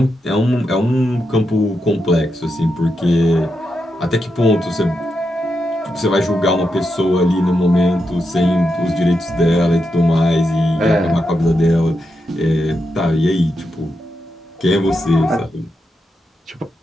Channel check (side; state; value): both; normal; correlation 0.85